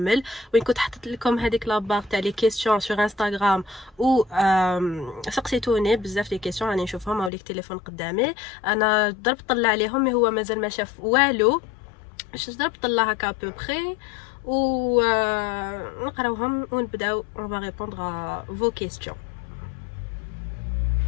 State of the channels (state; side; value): drops out; right; at 7.3 s